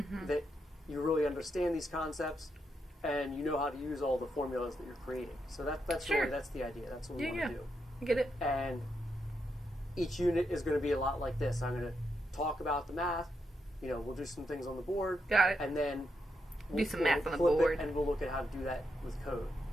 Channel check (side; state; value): both; normal; correlation 0.82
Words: that you really understand these concepts, and you know how to use all the formulas that you're creating. So that's sure. really, that's the idea. That's what we want to do. I get it. And each unit is going to be a lot like this. I'm going to talk about the math. We'll do some things on the board. Got it. And then Do some math on the board. And we'll look at how to do that with code.